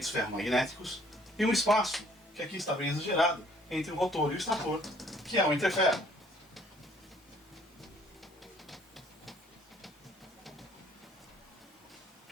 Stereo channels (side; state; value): both; normal; correlation 0.60